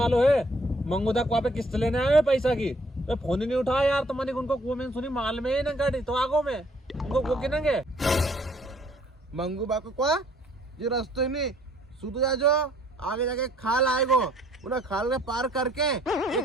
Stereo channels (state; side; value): normal; both; correlation 0.62